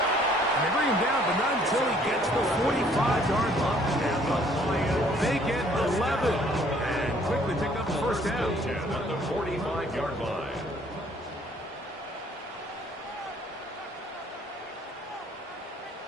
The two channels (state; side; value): normal; both; correlation 0.60